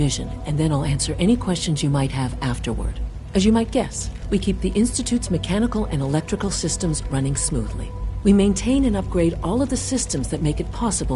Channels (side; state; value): both; identical; correlation 1.00